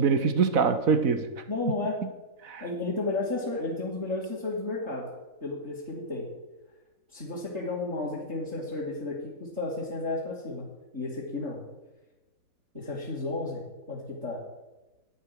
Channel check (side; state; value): left; late; 3.3 ms